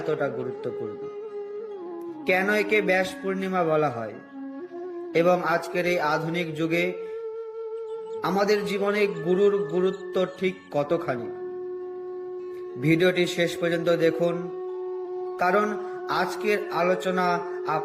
গুরুত্বপূর্ণ, কেন একে ব্যাস পূর্ণিমা বলা হয়, এবং আজকের এই আধুনিক যুগে আমাদের জীবনে গুরুর গুরুত্ব ঠিক কতখানি। ভিডিওটি শেষ পর্যন্ত দেখুন, কারণ আজকের আলোচনা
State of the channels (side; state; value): both; identical; correlation 1.00